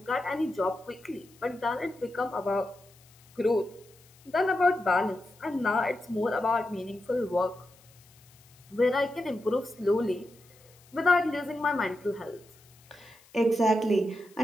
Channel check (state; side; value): noise; left; hiss, 27 dB below the sound